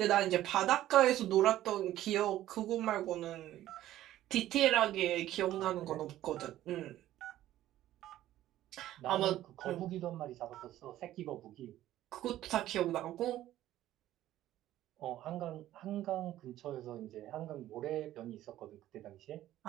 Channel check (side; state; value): left; quieter; 13.7 dB